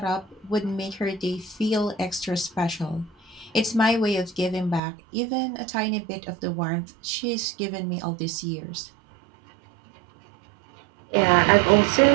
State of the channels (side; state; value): left; drops out; at 4.8 s